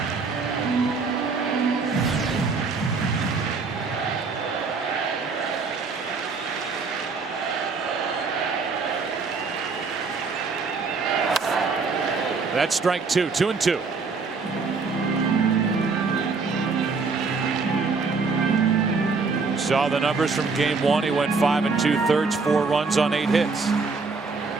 That's strike 2. 2-2. Saw the numbers from game 1. He went 5 2/3, 4 runs on 8 hits.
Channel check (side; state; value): left; quieter; 4.5 dB